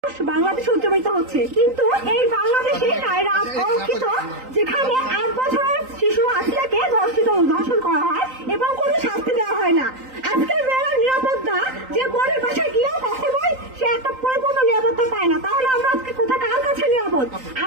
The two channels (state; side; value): late; left; 3.9 ms